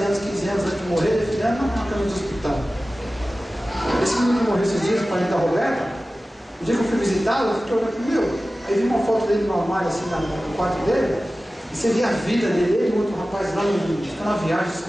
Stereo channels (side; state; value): both; normal; correlation 0.96